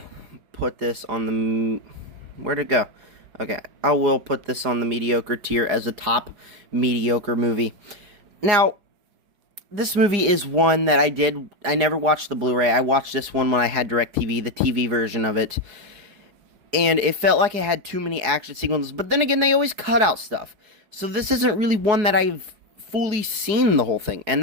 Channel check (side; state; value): left; late; 4.8 ms